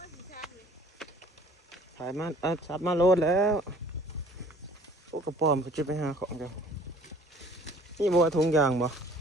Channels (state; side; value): normal; both; correlation 0.52